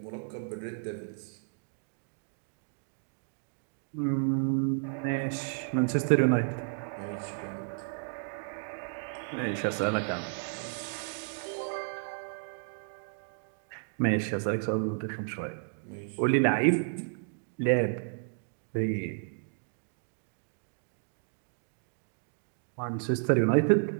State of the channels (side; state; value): left; silent; 56 dB below the other